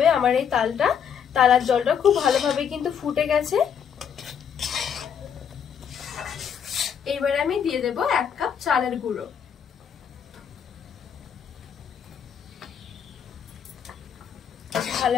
আমার এই তালার জলটা খুব ভালোভাবে কিন্তু ফুটে গেছে। এবারে আমি দিয়ে দেব 1 কাপ চালের গুঁড়ো।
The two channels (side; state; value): right; quieter; 7.8 dB